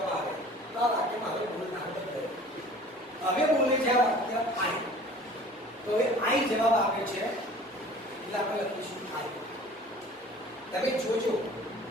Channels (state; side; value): normal; both; correlation 0.47